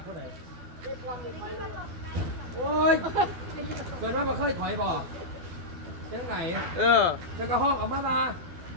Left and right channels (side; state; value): left; late; 12 ms